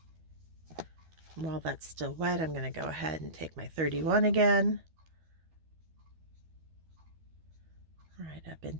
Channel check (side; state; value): left; late; 12 ms